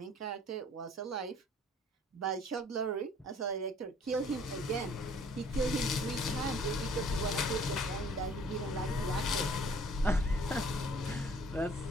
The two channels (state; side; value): normal; both; correlation 0.56